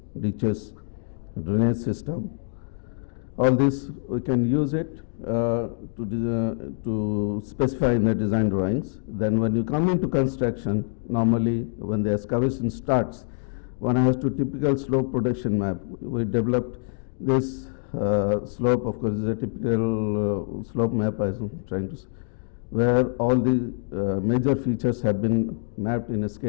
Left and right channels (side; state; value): right; silent; digital silence